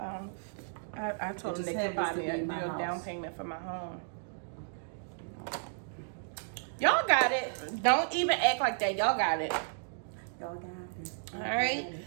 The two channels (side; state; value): left; silent; digital silence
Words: I told them they could buy me a down payment for my home. Y'all got it. Don't even act like that. Y'all got it. Y'all got it. All right.